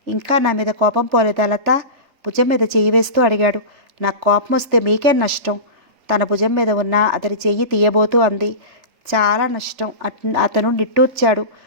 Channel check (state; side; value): late; left; 3.3 ms